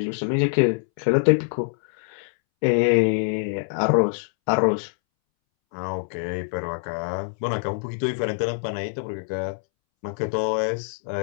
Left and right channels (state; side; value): silent; right; 62 dB below the other